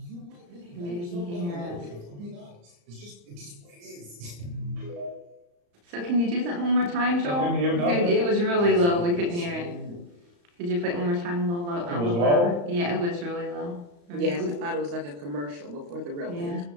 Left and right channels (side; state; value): left; late; 35 ms